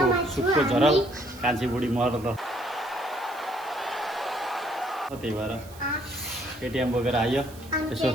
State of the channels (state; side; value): noise; right; hiss, 21 dB below the sound